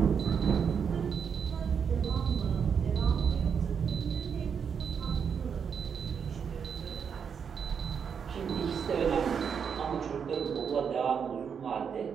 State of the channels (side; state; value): left; quieter; 6.9 dB